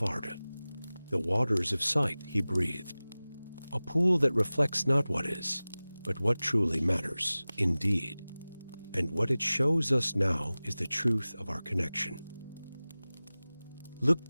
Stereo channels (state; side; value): inverted; both; correlation -0.98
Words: Arda. "The waters of sight," he breathed. "A pool that reflects not what is, but what truly matters, indeed. And what it shows us now is the truth of our connection." Look